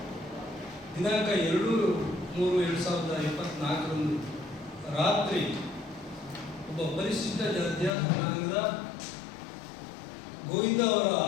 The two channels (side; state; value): right; drops out; at 8.0 s